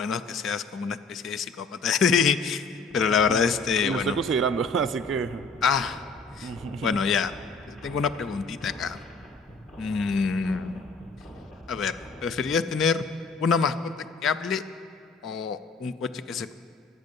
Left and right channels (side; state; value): right; quieter; 4.0 dB